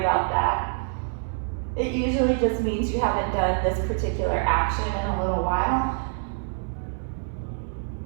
that. It usually just means you haven't done this particular action in a little while.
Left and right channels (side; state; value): left; silent; 60 dB below the other